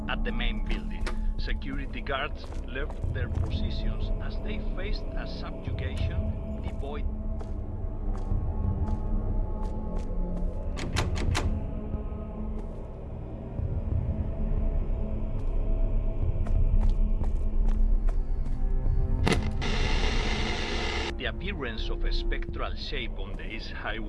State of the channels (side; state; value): both; identical; correlation 1.00